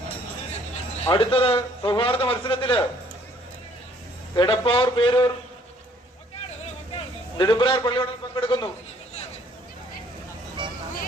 അടുത്തത് സൗഹാർദ്ദ മത്സരത്തില് എടപ്പാർ പേരൂർ നെടുമ്പ്രയാർ പള്ളിയോടങ്ങൾ പങ്കെടുക്കുന്നു.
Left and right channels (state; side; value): normal; both; correlation 0.61